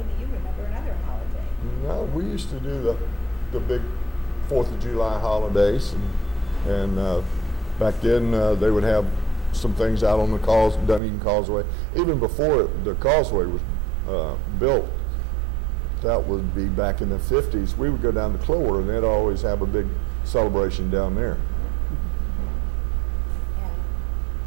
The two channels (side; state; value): left; drops out; at 11.0 s